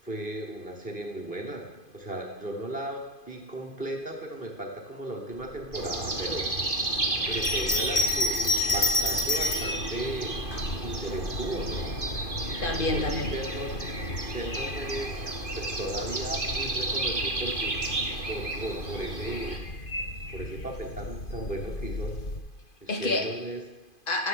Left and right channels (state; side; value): late; right; 2.5 ms